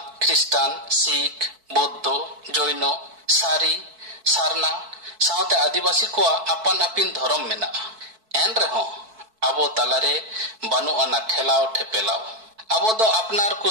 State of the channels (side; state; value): left; late; 4.6 ms